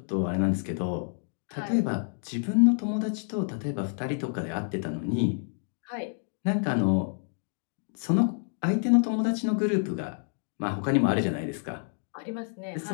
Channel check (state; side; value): silent; right; 59 dB below the other